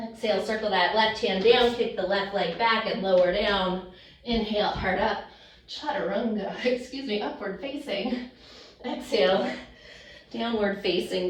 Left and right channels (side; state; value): both; identical; correlation 1.00